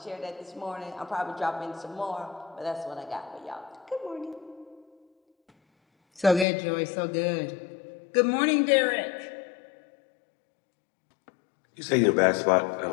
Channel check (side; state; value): right; drops out; at 6.5 s